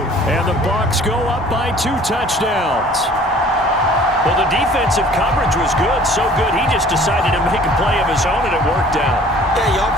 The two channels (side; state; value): both; normal; correlation 0.51